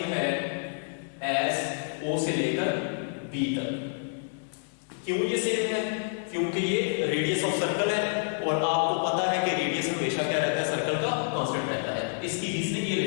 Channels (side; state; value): right; silent; digital silence